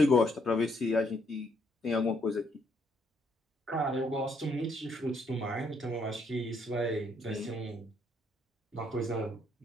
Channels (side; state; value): both; normal; correlation 0.71